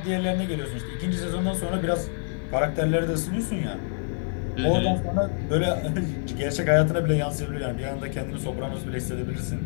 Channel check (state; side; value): silent; right; digital silence